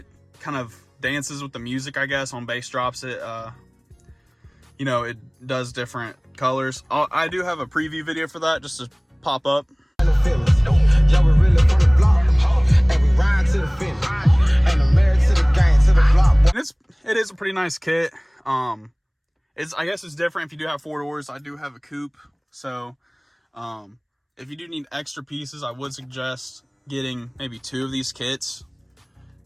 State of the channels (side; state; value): both; identical; correlation 1.00